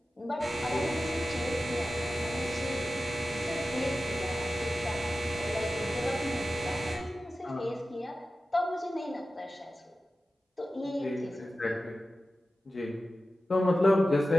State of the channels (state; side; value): normal; both; correlation 0.94